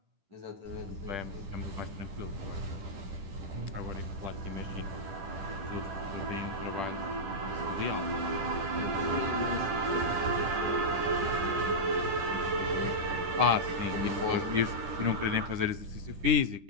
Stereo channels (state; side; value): late; left; 10 ms